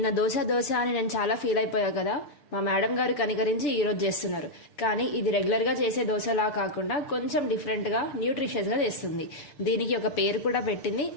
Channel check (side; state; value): right; late; 7.1 ms